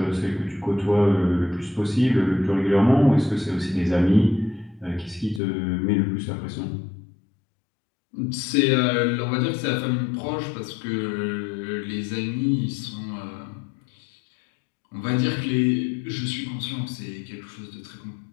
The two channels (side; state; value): right; drops out; at 5.4 s